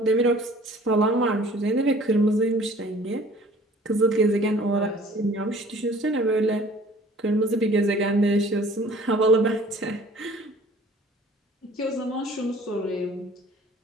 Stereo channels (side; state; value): both; normal; correlation 0.51